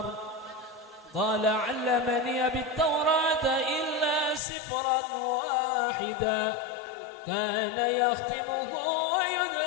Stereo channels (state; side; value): drops out; right; at 4.4 s